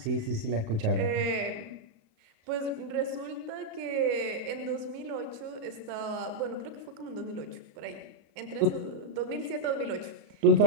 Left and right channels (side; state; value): left; late; 36 ms